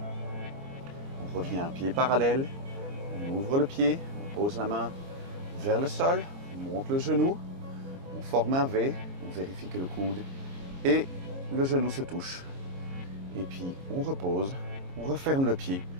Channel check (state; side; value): late; left; 22 ms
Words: revient un pied parallèle, on ouvre le pied, on pose la main vers le sol, on monte le genou, on forme un V, on vérifie que le coude et le genou se touchent. Et puis on repose, on referme le pied,